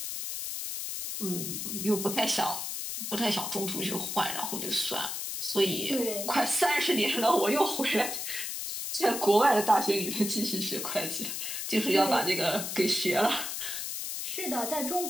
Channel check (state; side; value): noise; left; hiss, 4 dB below the sound